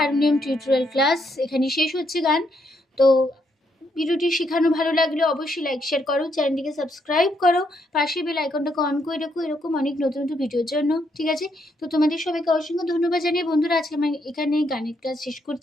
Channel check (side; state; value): both; normal; correlation 0.75